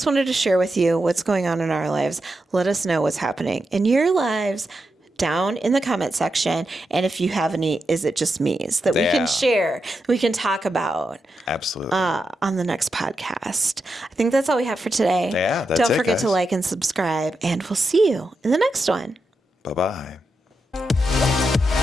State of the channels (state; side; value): normal; both; correlation 0.87